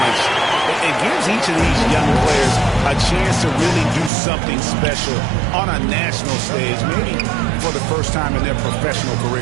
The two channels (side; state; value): left; drops out; at 4.1 s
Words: It gives each of these young players a chance to really do something special on a national stage, maybe for the first time in their professional